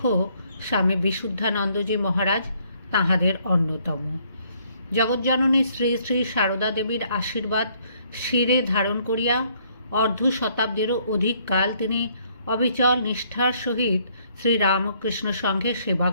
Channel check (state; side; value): inverted; both; correlation -0.66